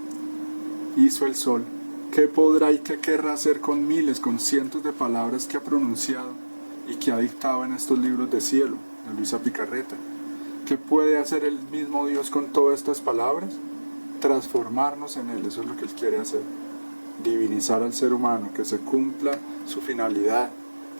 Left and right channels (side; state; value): both; inverted; correlation -1.00